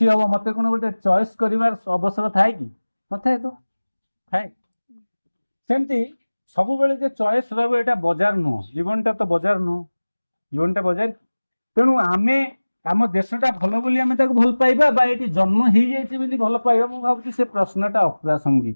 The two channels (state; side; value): inverted; both; correlation -1.00